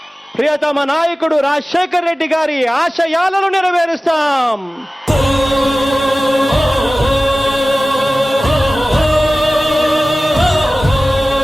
ప్రియతమ నాయకుడు రాజశేఖర్ రెడ్డి గారి ఆశయాలను నెరవేరుస్తాం.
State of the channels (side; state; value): both; normal; correlation 0.96